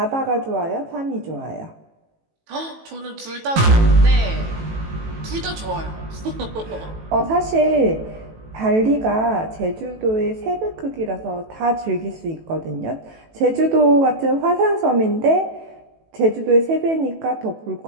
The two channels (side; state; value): left; late; 18 ms